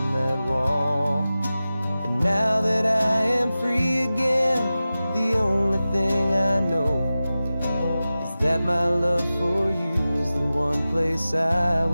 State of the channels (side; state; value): both; inverted; correlation -0.95